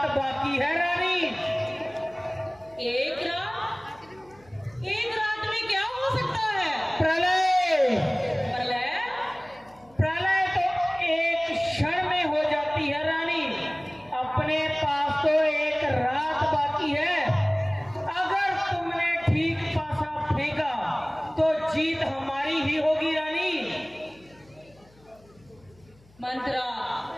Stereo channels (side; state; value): left; noise; hum, 28 dB below the sound